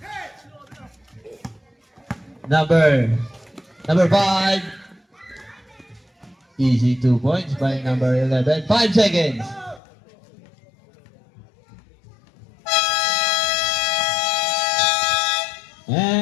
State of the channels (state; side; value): drops out; right; at 9.8 s